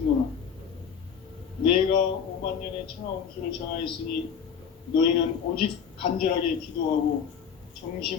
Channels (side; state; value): right; quieter; 7.2 dB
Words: 내가 5만 년의 천하운수를 정하였으니 너희는 오직 간절하게 기도하고